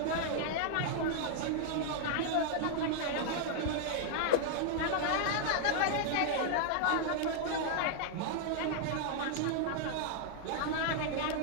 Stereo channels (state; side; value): different; both; correlation 0.00